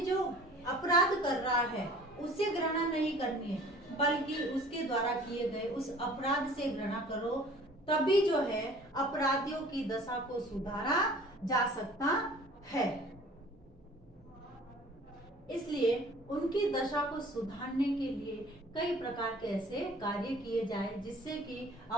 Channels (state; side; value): normal; both; correlation 0.49